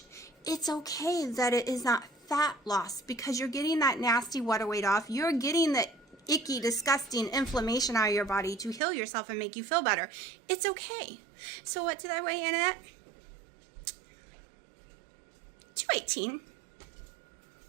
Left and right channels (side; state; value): left; drops out; at 8.8 s